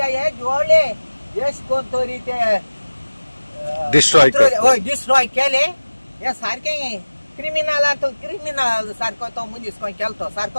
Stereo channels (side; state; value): both; inverted; correlation -1.00